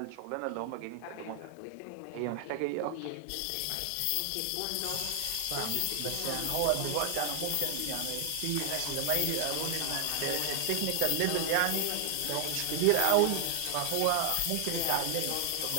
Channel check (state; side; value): different; both; correlation 0.00